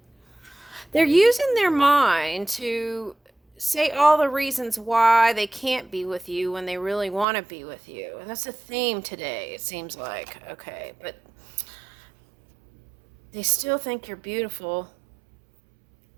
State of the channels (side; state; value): left; drops out; at 7.2 s